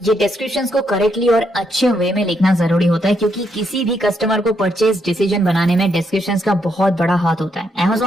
ये डिस्क्रिप्शंस को करेक्टली और अच्छे वे में लिखना जरूरी होता है क्योंकि किसी भी कस्टमर को परचेज डिसीजन बनाने में डिस्क्रिप्शंस का बहुत बड़ा हाथ होता है।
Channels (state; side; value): normal; both; correlation 0.77